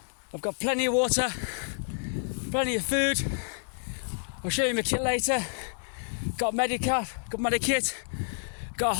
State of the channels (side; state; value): right; silent; digital silence